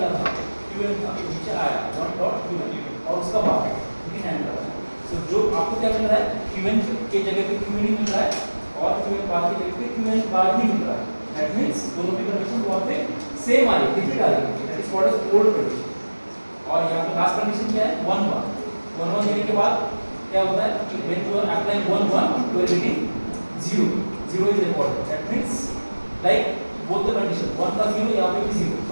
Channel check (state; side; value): inverted; both; correlation -1.00